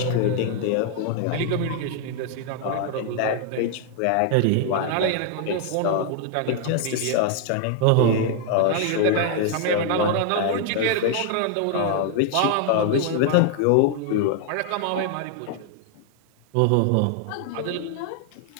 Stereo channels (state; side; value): different; both; correlation 0.00